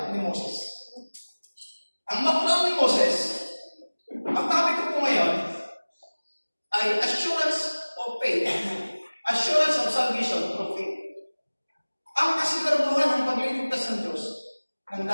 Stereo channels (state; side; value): inverted; both; correlation -1.00